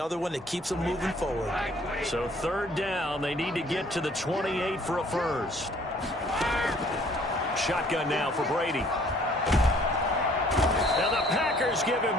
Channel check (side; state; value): both; normal; correlation 0.58